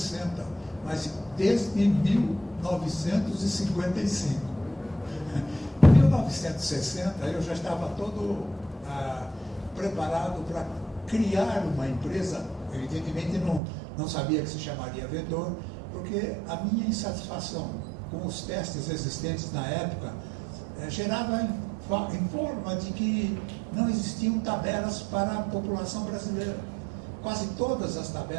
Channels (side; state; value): left; drops out; at 13.6 s